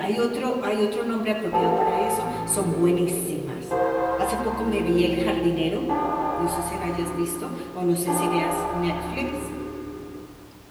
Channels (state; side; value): identical; both; correlation 1.00